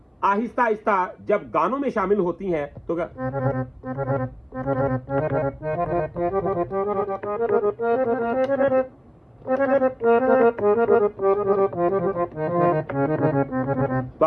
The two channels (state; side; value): identical; both; correlation 1.00